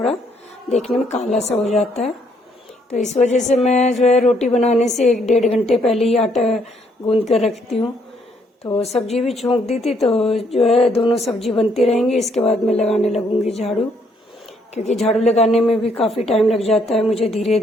देखने में काला सा हो जाता है। तो इस वजह से मैं जो है रोटी बनाने से 1-1.5 घंटे पहले ही आटा गूंद कर रखती हूँ। तो सब्जी भी छोंक दी थी, तो जो है दोनों सब्जी बनती रहेंगी, इसके बाद मैं लगाने लगूंगी झाड़ू, क्योंकि झाड़ू लगाने में भी काफ़ी टाइम लग जाता है मुझे, धीरे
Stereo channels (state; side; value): normal; both; correlation 0.69